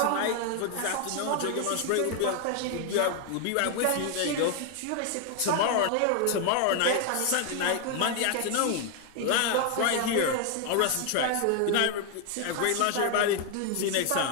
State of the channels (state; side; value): different; both; correlation 0.00